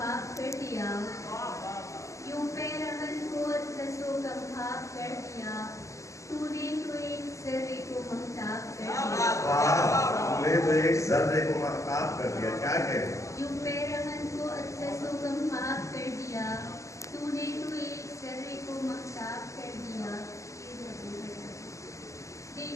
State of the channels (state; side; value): late; right; 0.15 ms